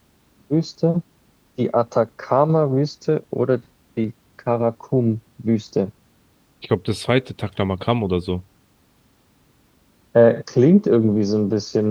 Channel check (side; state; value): both; identical; correlation 1.00